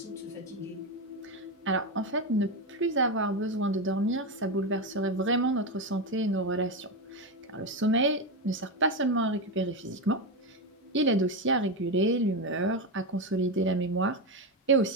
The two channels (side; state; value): both; normal; correlation 0.12